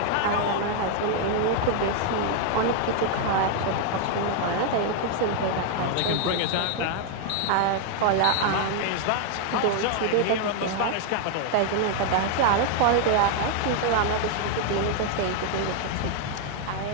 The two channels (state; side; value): different; both; correlation 0.00